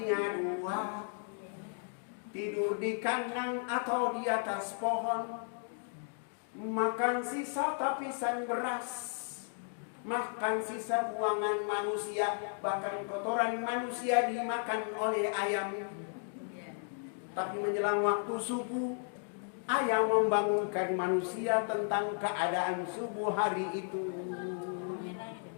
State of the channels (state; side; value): silent; right; 55 dB below the other